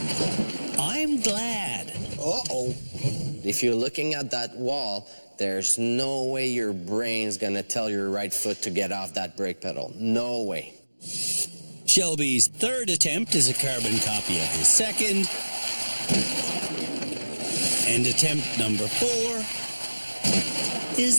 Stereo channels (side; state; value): both; inverted; correlation -1.00